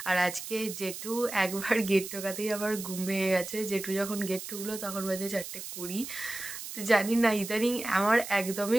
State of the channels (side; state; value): right; noise; hiss, 9 dB below the sound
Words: আর আজকে জেঠু একবার গেট টোকাতেই আবার ঘুম ভেঙে গেছে। জেঠু যখন গেট ঠুকলো তখন বাজে 4:20। তো জানি না, ইদানিং আমার